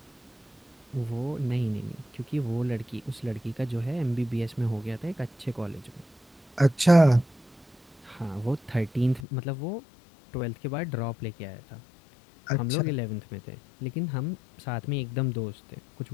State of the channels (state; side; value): drops out; right; at 9.2 s